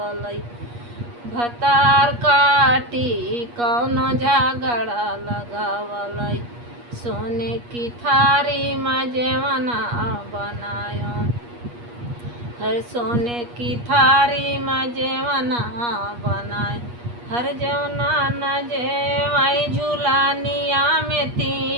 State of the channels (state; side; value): late; left; 8.4 ms